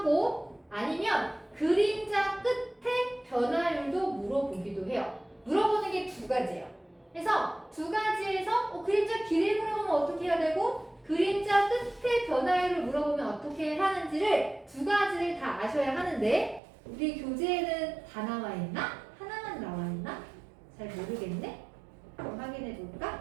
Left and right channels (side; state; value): left; drops out; at 16.6 s